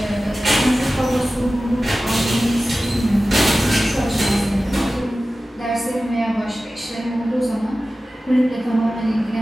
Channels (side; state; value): both; normal; correlation 0.95